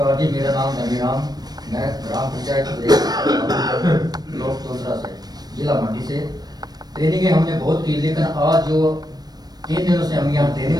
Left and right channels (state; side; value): late; left; 0.19 ms